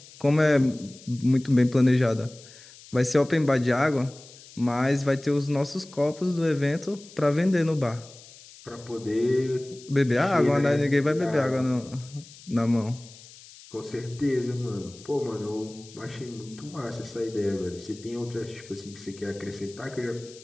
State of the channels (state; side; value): noise; left; hiss, 20 dB below the sound